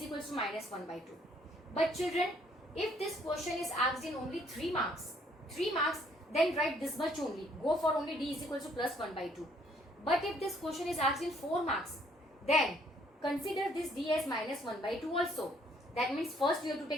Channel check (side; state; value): both; normal; correlation 0.65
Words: equals to minus 1 by 2. But children, if this question is asked in only 3 marks, then write this much only. Go for only D is equals to plus 1 by 2. But if this question is asked in 4 marks, then consider this D as minus 1 by 2 also. That means first you have to